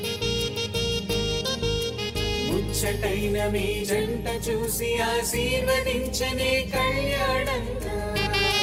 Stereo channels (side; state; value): both; identical; correlation 1.00